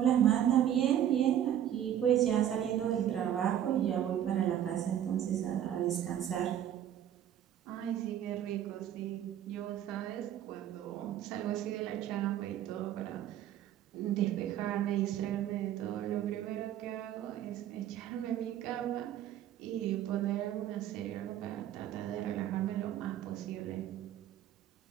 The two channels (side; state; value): left; quieter; 10.8 dB